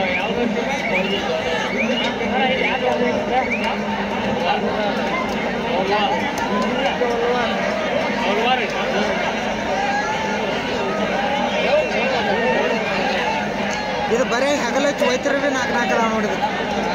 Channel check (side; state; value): both; identical; correlation 1.00